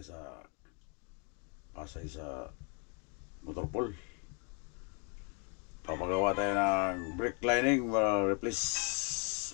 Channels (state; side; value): quieter; right; 35.6 dB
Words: Pasay sa Motorpool. Papagawa tayo ng brake lining, replace